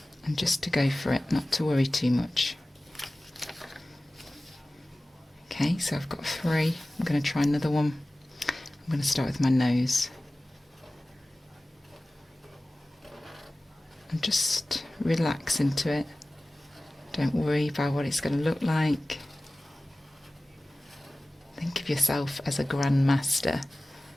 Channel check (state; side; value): normal; both; correlation 0.97